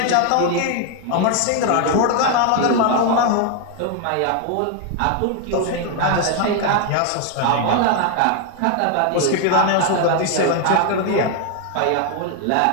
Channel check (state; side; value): different; both; correlation 0.01